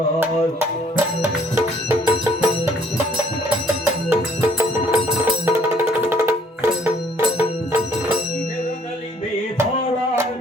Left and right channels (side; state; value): both; normal; correlation 0.62